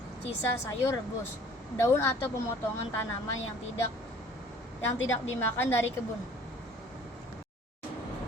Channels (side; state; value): both; normal; correlation 0.51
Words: sisa sayur rebus, daun atau pemotongan tanaman yang tidak dimakan dari kebun.